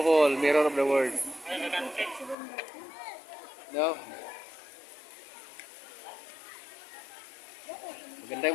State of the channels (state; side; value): drops out; right; at 2.4 s